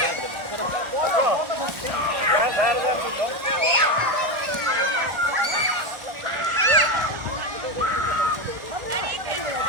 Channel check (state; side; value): late; left; 1.4 ms